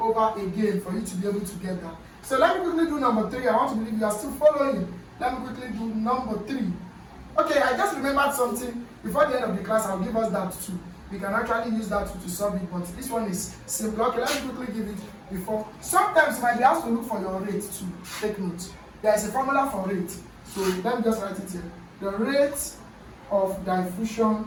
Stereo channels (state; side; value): identical; both; correlation 1.00